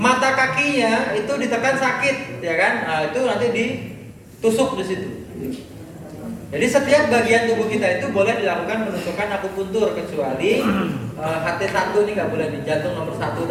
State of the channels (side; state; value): both; identical; correlation 1.00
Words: kakinya itu ditekan sakit, ya kan? Nah, itu nanti ditusuk di situ. Jadi setiap bagian tubuh kita itu boleh dilakukan penusukan akupuntur kecuali HT1 ini nggak boleh di jantung nomor 1